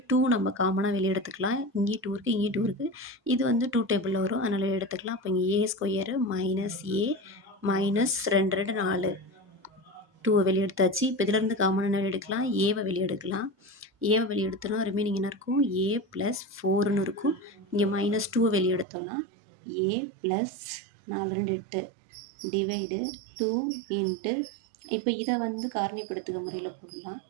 2 நம்ம காமனாக வெளியே எடுத்துக்கலாம். இங்கேயும் 2 இருக்குது, இங்கேயும் 2 இருக்குது. இது வந்து 2 டேபிளில் வரும், அதனால் எடுத்துக்கலாம். அப்போ இங்கே ஏ ஸ்கொயரு மைனஸ் ஏ மைனஸ் 2 2 4 2 வெளியே எடுத்தாச்சு. இப்போ இதிலேருந்து காமனாக என்ன எடுக்கலாம், ஏவை வெளியே எடுக்கலாம். ஏவை வெளியே எடுத்தோன்னா ரிமைனிங் என்ன இருக்கும், ஏ ப்ளஸ் 4ன்னு இருக்கும். இங்கே மைனஸ் 2 வெளியே எடுத்தோன்னா ஏ ப்ளஸ் 4 2 8 டிவைடு 2 இன்ட்டு, இப்போ இதை வந்து காரணிப்படுத்துக முறையில் போடலாம்.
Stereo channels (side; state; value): left; drops out; at 18.9 s